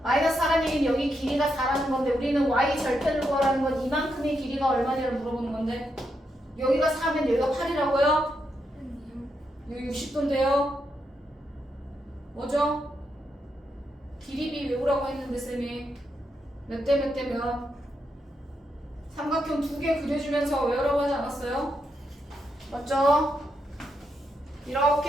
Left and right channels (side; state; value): both; normal; correlation 0.82